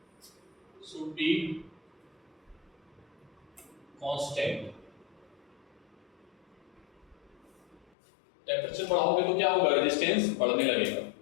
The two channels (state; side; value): drops out; right; at 7.9 s